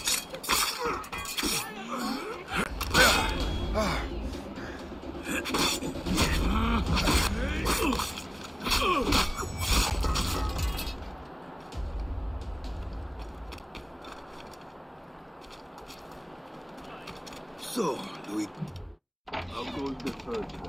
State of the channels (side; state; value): both; identical; correlation 1.00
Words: So, Louis, how goes the third